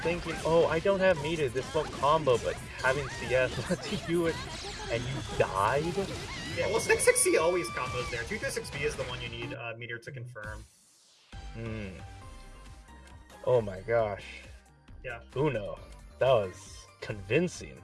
oh, I don't have meter, this won't combo, but having CS lets you do it, and you died? Yeah, well, 660 always combos there. 236B is the one you need meter to confirm. Hmm. Oh my gosh. Yeah. Uno. That was convincing.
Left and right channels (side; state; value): both; identical; correlation 1.00